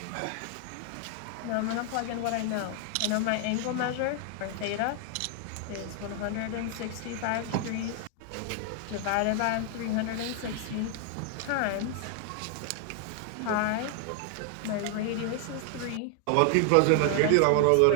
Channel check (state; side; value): different; both; correlation 0.00